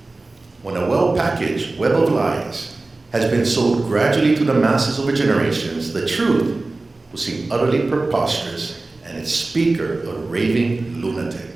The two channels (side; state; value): left; quieter; 3.2 dB